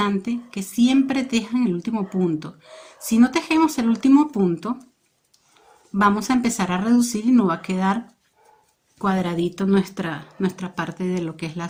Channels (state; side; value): identical; both; correlation 1.00